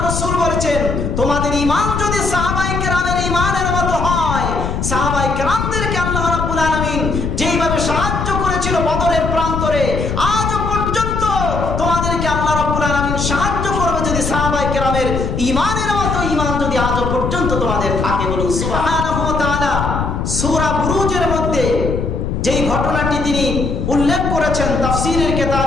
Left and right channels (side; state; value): left; noise; rumble, 2 dB below the sound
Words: রাসূল বলেছেন, তোমাদের ঈমান যদি সাহাবায়ে কেরামের ঈমানের মতো হয়, সাহাবায়ে কেরামদেরকে আল্লাহ রাব্বুল আলামিন যেইভাবে সাহায্য করেছিল বদরের প্রান্তরে, আজও পর্যন্ত তোমাদেরকে আল্লাহ রাব্বুল আলামিন সাহায্য করবে যদি সাহাবায়ে কেরামের ঈমানের মতো ঈমান যদি আজও পর্যন্ত তোমাদের থাকে। বলুন সুবহানাহু ওয়া তাআলা। সূরা বুরুজের মধ্যে যেই ঘটনাটি তিনি উল্লেখ করেছেন, তাফসীরের